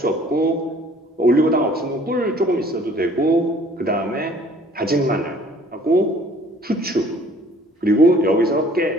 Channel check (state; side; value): normal; both; correlation 0.55